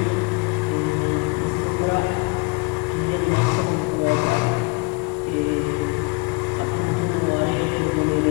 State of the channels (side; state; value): right; quieter; 29.7 dB